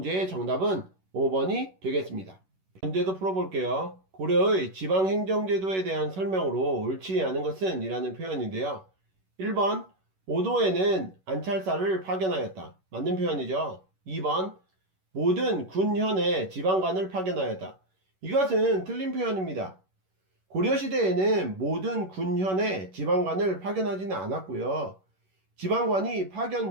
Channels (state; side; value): late; left; 11 ms